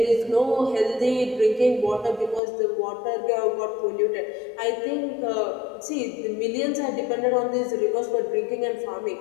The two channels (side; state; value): right; drops out; at 2.4 s